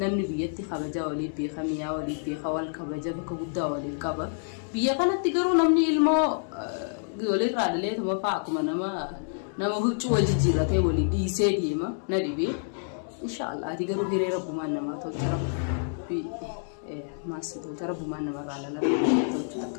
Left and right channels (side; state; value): right; silent; digital silence